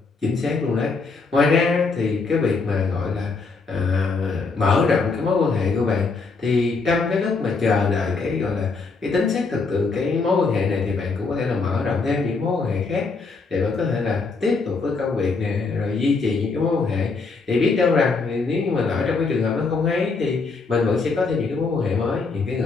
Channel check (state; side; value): quieter; right; 4.3 dB